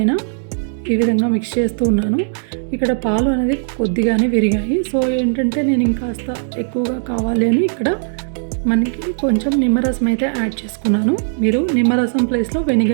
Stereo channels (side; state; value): left; silent; 67 dB below the other